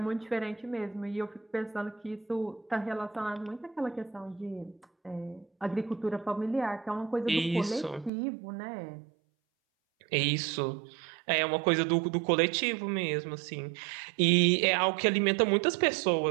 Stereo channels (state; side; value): drops out; left; at 8.1 s